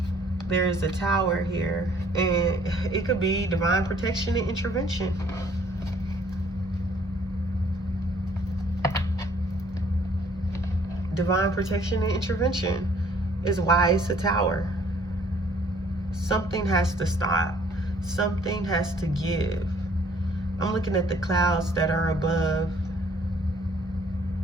There is a Tower here, and it could be divine protection and intervention. Divine protection and intervention is why it's a Tower. Something has to stop. Something has to give. I'm looking at the clouds that are above.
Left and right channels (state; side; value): normal; both; correlation 0.60